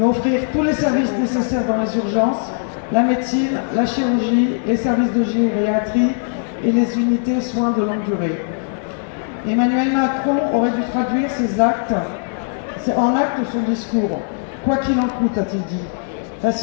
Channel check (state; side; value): silent; right; digital silence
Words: offrir tous les services nécessaires dans les urgences, la médecine, la chirurgie, les services de gériatrie et les unités soins de longue durée. Emmanuel Macron aurait dû traduire ses actes en acte son discours. Quoi qu'il en coûte, a-t-il dit. La